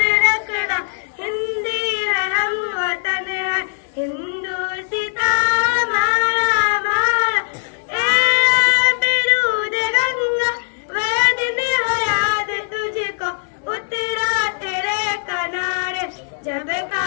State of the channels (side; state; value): right; silent; digital silence